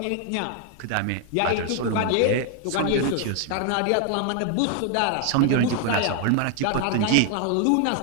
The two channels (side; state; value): both; different; correlation 0.00